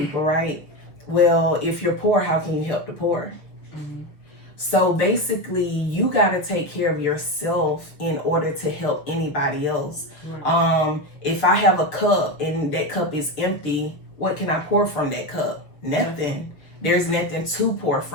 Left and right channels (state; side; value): late; right; 6.6 ms